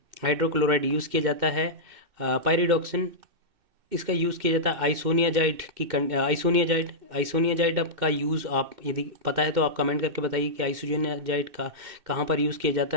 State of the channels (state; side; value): late; left; 2.1 ms